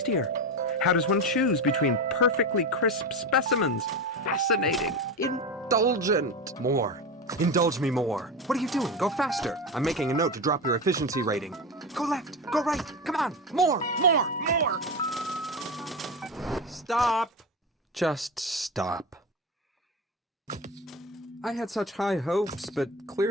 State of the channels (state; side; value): normal; both; correlation 0.21